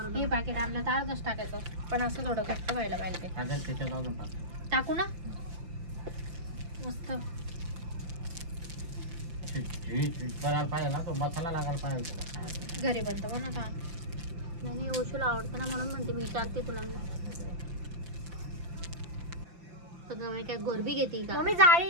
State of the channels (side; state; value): left; late; 5.8 ms